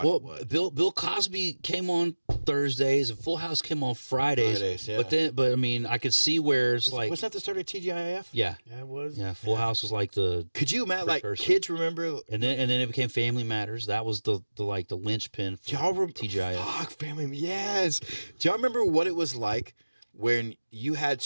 Well, what. Bill Cosby came on Thursdays and Full House came on Fridays. Fridays, yeah. But I mean, I could see where it's like, Wasn't that the start of TGIF? yeah, Yeah, it was. yeah. Full House was like the, Could you imagine? Like Precursor. kids remember? and then it became Family Matters. That was the like the linchpin for Y'all remember? TGIF. Fuck, family. Yes. Do y'all remember what it was like when you had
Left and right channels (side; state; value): both; inverted; correlation -1.00